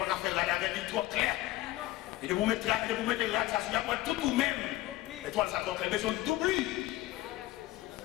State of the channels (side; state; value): right; quieter; 16.8 dB